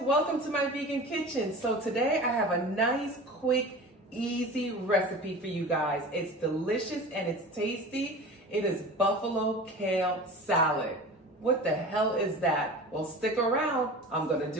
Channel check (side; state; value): both; normal; correlation 0.36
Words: welcome to my vegan kitchen. So today I have a nice, quick, easy recipe for you guys. It's delicious and it's tasty. It is Buffalo Kale Salad. What the hell is that? Well, stick around. I'm gonna